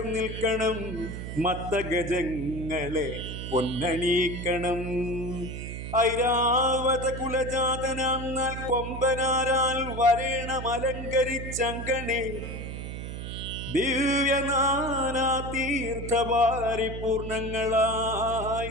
നിൽക്കണം. മത്തഗജങ്ങളെ പൊന്നണീക്കണം. ഐരാവത കുലജാതനാം നാൽ കൊമ്പനാരാൽ വരേണം അലങ്കരിച്ചങ്കണേ. ദിവ്യനാനാ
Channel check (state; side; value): noise; right; hum, 7 dB below the sound